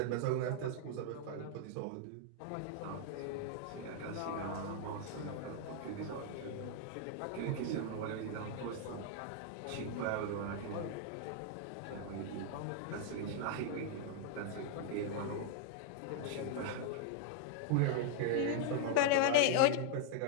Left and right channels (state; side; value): different; both; correlation -0.01